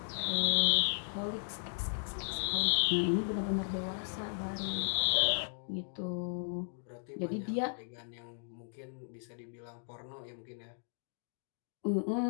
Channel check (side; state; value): right; silent; digital silence